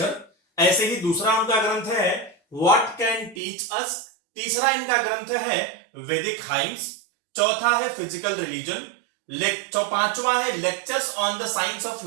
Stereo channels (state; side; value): drops out; left; at 3.4 s